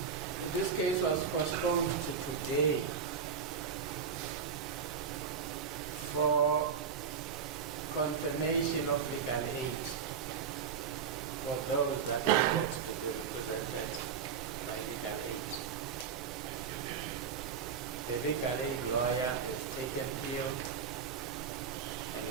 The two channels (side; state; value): left; quieter; 6.7 dB